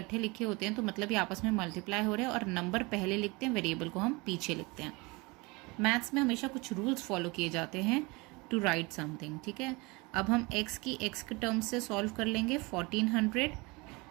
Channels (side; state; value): left; quieter; 25.9 dB